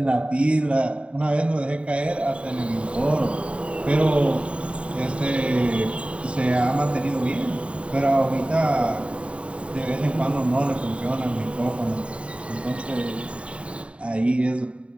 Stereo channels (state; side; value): late; left; 0.061 ms